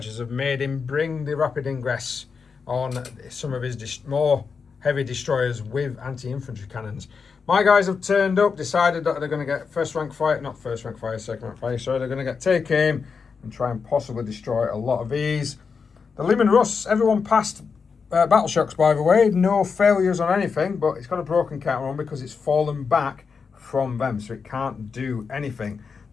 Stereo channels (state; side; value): quieter; right; 5.5 dB